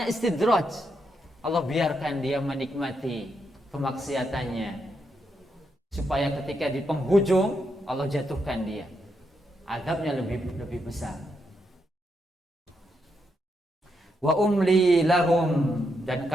istidraj. Allah biarkan dia menikmati kemaksiatannya, supaya ketika di penghujung Allah jatuhkan dia. Azabnya lebih besar. Wa umli lahum, dan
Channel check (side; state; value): both; normal; correlation 0.81